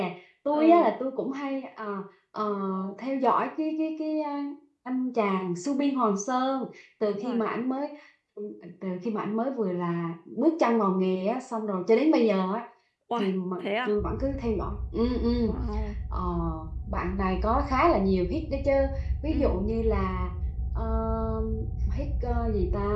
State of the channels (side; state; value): both; identical; correlation 1.00